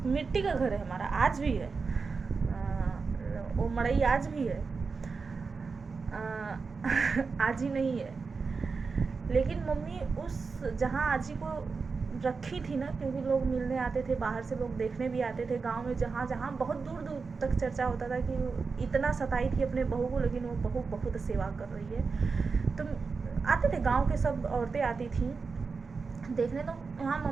मिट्टी का घर है हमारा, आज भी है, वो मड़ई आज भी है, आजी नहीं है। लेकिन मम्मी उस जहाँ आजी को रखी थी ना, क्योंकि लोग मिलने आते थे, बाहर से लोग देखने भी आते थे, गांव में जहाँ जहाँ बहुत दूर दूर तक चर्चा होता था कि इतना सताई थी अपने बहू को, लेकिन वो बहू बहुत सेवा कर रही है। तो आते थे, गांव के सब औरतें आती थी देखने। तो वहाँ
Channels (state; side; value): quieter; left; 4.7 dB